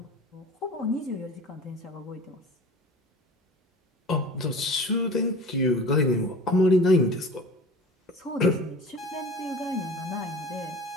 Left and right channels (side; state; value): both; normal; correlation 0.39